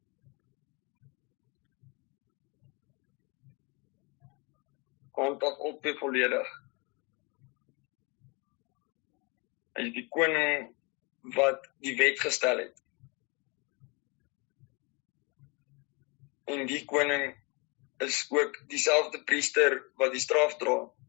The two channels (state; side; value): quieter; right; 29.9 dB